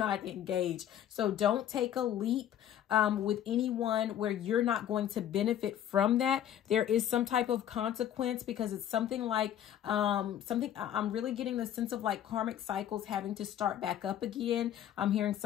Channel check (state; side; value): quieter; right; 10.7 dB